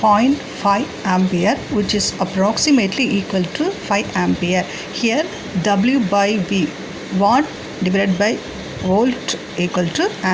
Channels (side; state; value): both; identical; correlation 1.00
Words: ampere, which is approximately equal to 5 ampere. Here W by V, watt divided by volt equal to